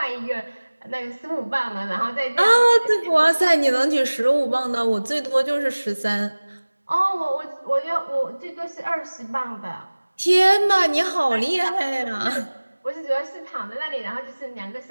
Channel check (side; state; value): both; inverted; correlation -1.00